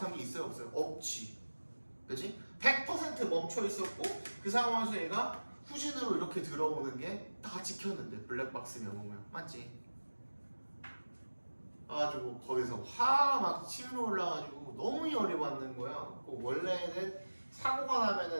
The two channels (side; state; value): both; inverted; correlation -1.00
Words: 게 있어요 없어요? 없지. 그치? 100% 멈춰 있었고 그 상황에서 얘가 후진으로 이렇게 들어오는 게 다 찍혔는데 블랙박스 명호모양 맞지? 가지고 거기서 화가 막 치밀어 올라가지고 너무 열이 받는 거야. 원래는 사고가